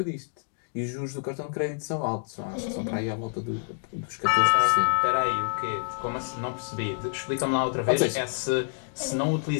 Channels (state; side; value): silent; right; digital silence